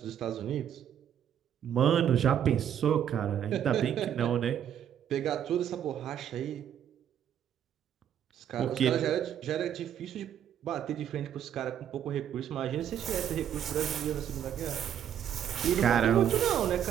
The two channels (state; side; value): quieter; left; 9.6 dB